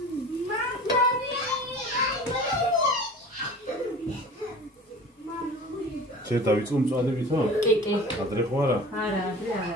შენ დავიწყო მწვადებითო? კი. ადრე ხო არა? არა, ადრე არ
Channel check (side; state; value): both; normal; correlation 0.40